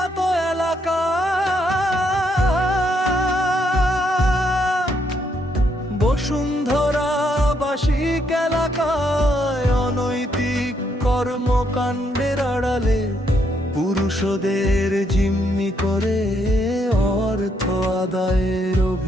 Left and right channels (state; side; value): normal; both; correlation 0.74